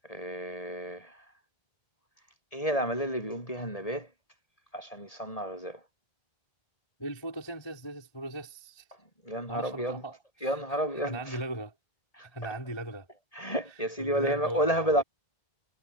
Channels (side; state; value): right; late; 1.8 ms